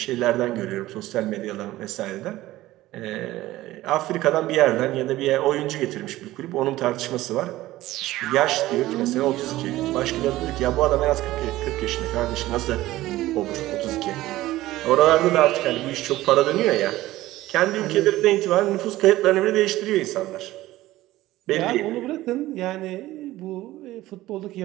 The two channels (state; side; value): quieter; left; 16.5 dB